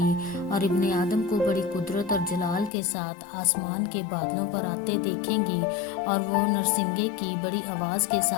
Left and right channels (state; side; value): drops out; right; at 2.7 s